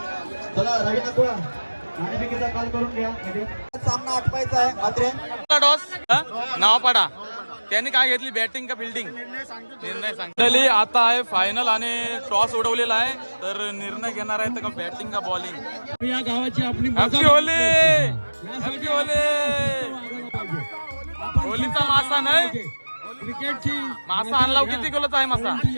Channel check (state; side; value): inverted; both; correlation -1.00